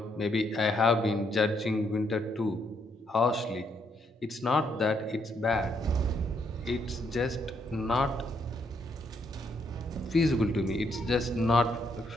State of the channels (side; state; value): both; normal; correlation 0.74